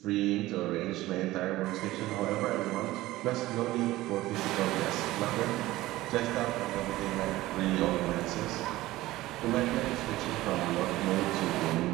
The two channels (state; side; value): quieter; left; 17.3 dB